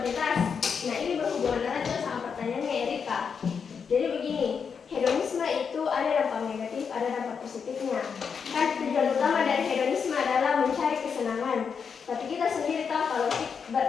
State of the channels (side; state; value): right; quieter; 6.3 dB